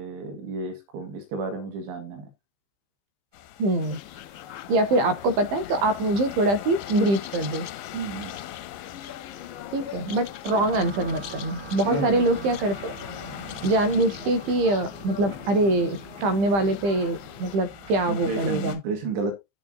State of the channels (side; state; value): left; late; 15 ms